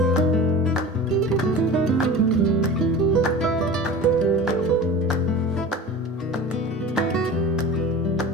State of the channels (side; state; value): both; normal; correlation 0.35